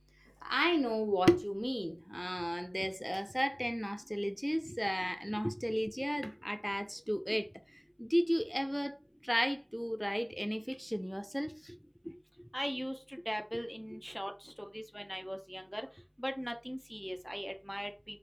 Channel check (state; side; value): identical; both; correlation 1.00